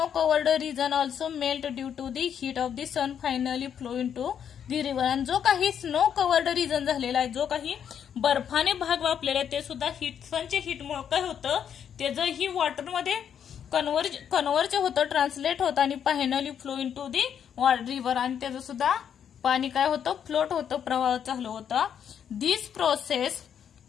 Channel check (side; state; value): right; quieter; 8.5 dB